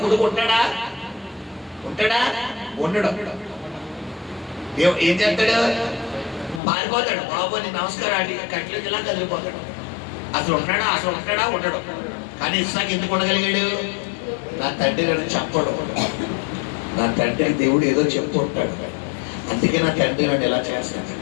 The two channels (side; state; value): right; drops out; at 6.6 s